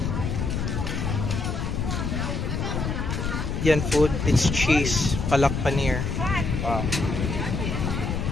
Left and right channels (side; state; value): left; noise; rumble, 2 dB below the sound